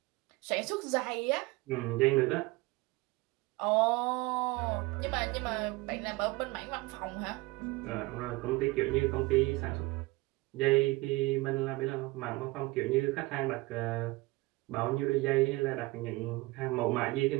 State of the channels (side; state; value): left; quieter; 21.9 dB